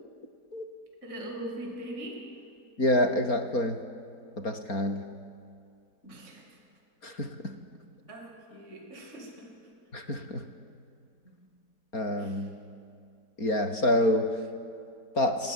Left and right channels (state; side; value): late; right; 4.3 ms